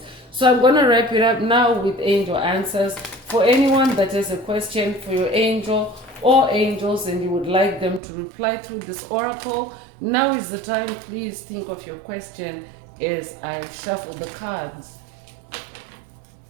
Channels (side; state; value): left; drops out; at 8.0 s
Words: So I'm going to wrap it up now with angel answers. For anyone that has a question for your angel or angels and you would like them to reply through this oracle, now is the time. Please think of your question as I shuffle the cards.